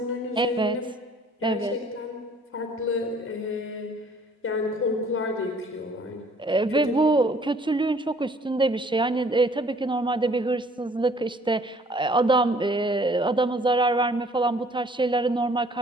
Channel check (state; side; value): normal; both; correlation 0.57